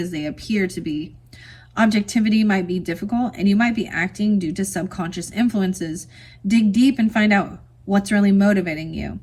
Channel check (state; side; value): identical; both; correlation 1.00